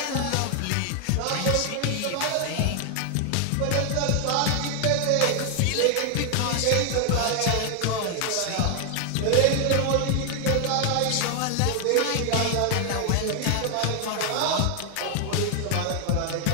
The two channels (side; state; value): both; different; correlation 0.00